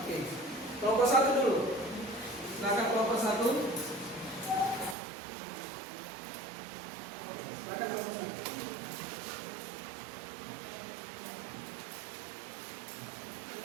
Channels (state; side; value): drops out; left; at 5.0 s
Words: Kelompok 1 dulu. Silakan kelompok 1. Silakan kelompok 1.